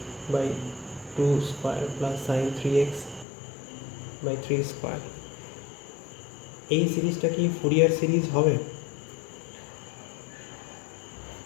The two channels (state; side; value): drops out; right; at 3.2 s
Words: by 2 square plus sin 3x by 3 square। এই সিরিজটা কি ফুরিয়ার সিরিজ হবে?